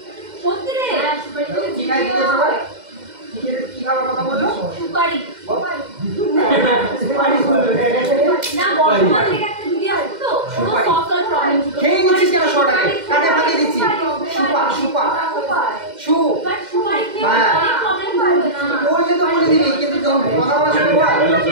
সত্যি রে? হ্যাঁ সুপারি খেলে কি খাই দিলে জিভে সবাই? হয়। কি খাবার কথা বললো? সুপারি সুপারি বলবে। না বর্তমান থেকে একটা ভিডিও আছে তো কোনো সুপারি। সফটওয়্যার প্রবলেম ছিল। খেয়ে নিচ্ছিস কেন 100 টাকা? কাটে ফাঁকি দিচ্ছি। সুপা সুপা সু বাট সুপারি খেয়ে হ্যাঁ। অনেক প্রবলেম হবে না। বললে তো বলে দিবি, কিন্তু যখন কথা বলা শুরু কর।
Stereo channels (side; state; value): left; late; 2.1 ms